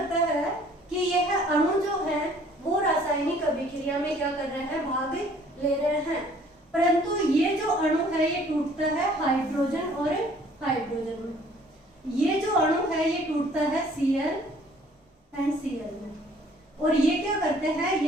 है कि यह अणु जो है वो रासायनिक अभिक्रिया में क्या कर रहे हैं? भाग ले रहे हैं। परंतु ये जो अणु है ये टूटता है हाइड्रोजन और हाइड्रोजन में। ये जो अणु है ये टूटता है Cl एंड Cl में। और ये क्या करते हैं? ये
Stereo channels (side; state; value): both; normal; correlation 0.57